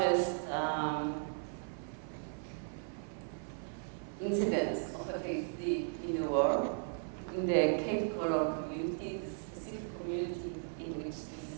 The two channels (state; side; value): silent; left; 53 dB below the other